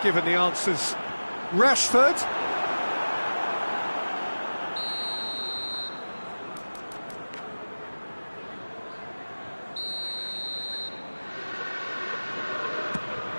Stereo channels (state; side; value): inverted; both; correlation -1.00